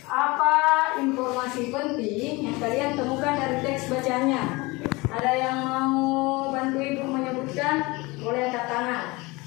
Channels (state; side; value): quieter; right; 23.8 dB